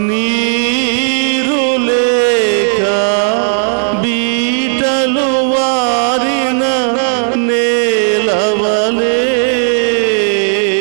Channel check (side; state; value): left; silent; digital silence